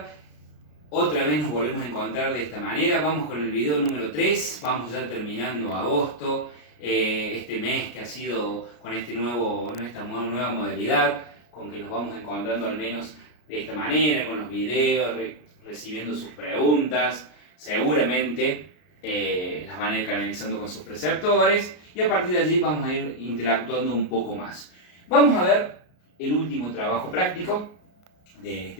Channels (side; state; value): right; late; 33 ms